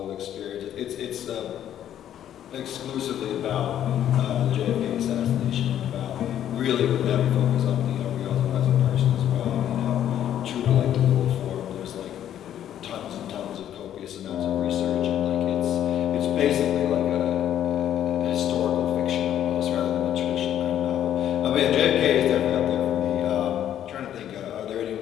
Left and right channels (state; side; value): quieter; right; 10.7 dB